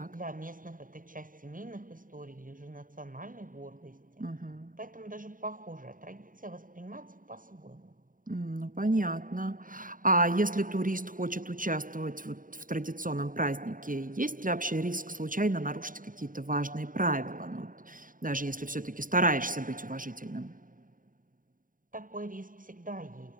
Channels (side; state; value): left; late; 0.39 ms